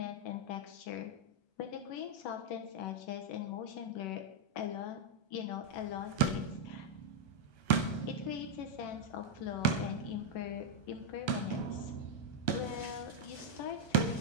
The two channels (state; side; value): late; right; 1.3 ms